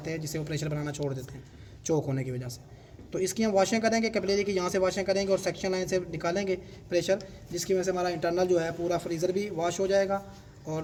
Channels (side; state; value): both; identical; correlation 1.00